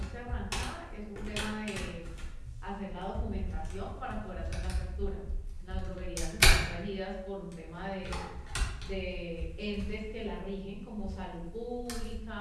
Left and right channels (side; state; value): both; identical; correlation 1.00